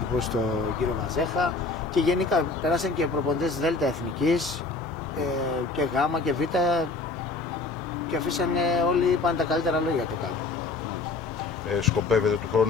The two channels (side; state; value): right; quieter; 3.8 dB